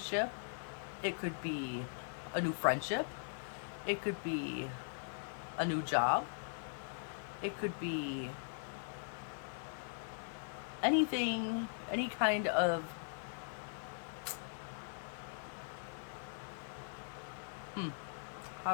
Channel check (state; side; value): silent; right; 51 dB below the other